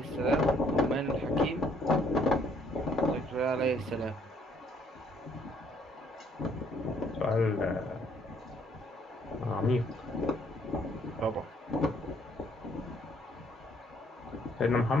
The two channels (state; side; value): normal; both; correlation 0.65